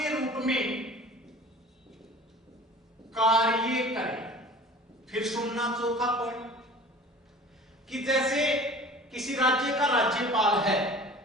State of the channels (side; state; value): both; normal; correlation 0.43